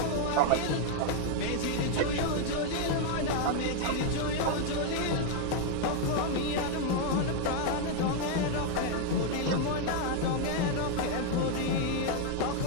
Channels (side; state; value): both; different; correlation 0.00